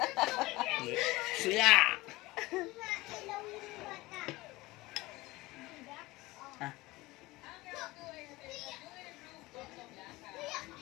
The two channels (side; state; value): right; quieter; 20.2 dB